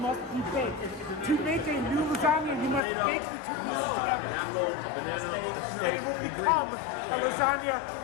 be baked. To make a new lasagna, you must bake the two pieces together. And it will become a lasagna.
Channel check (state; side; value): drops out; right; at 2.8 s